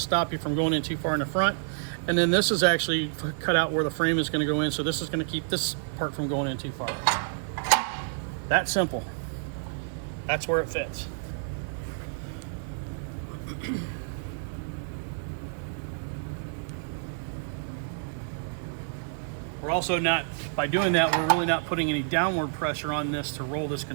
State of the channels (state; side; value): silent; left; digital silence